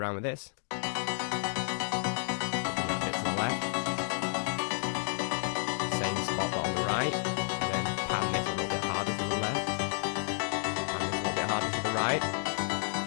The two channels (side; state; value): right; silent; digital silence